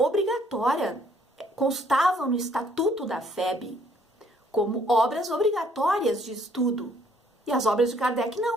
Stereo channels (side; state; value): both; normal; correlation 0.64